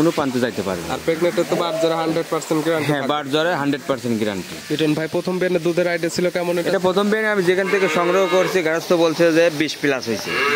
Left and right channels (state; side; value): identical; both; correlation 1.00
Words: প্রান্তে যাইতে পারবে। আর প্রেগনেন্টে তো বার জ্বরে 100% গ্যারান্টি। হ্যাঁ, বার জ্বরে 100% গ্যারান্টি। লিটন ভাই প্রথম বেনে দুধের আইডিয়া ছিল কেমন? এটা প্রথম বেনে আমি যেখান থেকে সংগ্রহ করছি, গারস্থ বলছে যে 20 প্লাস হয়েছে।